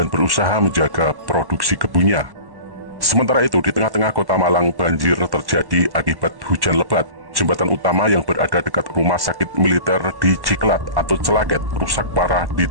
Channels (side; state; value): left; late; 1.1 ms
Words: berusaha menjaga produksi kebunnya. Sementara itu, di tengah-tengah kota Malang, banjir terjadi akibat hujan lebat. Jembatan utama yang berada dekat rumah sakit militer di Ciklat atau Celaket rusak parah